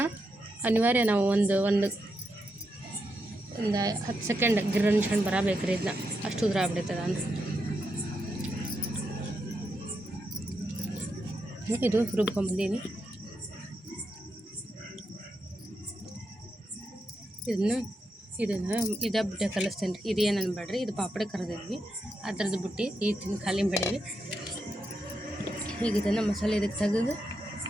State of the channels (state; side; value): normal; both; correlation 0.84